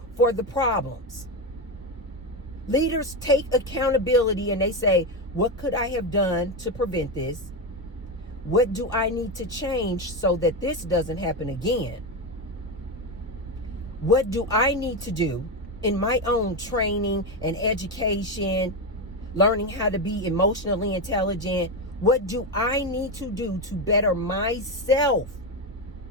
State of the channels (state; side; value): normal; both; correlation 0.12